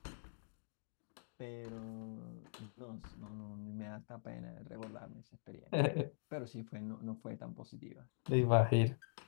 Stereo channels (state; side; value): silent; right; digital silence